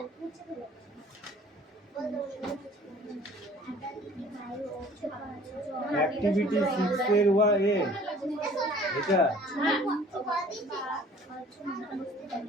অ্যাক্টিভিটি 6 এর এ এটা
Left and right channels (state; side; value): normal; both; correlation 0.51